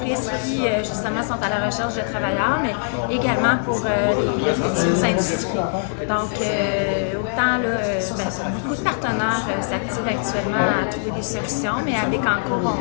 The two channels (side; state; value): right; silent; digital silence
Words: qui justement sont à la recherche de travailleurs, mais également pour les futures industries. Donc autant là, beaucoup de partenaires s'activent actuellement à trouver des solutions, mais à Bécancour,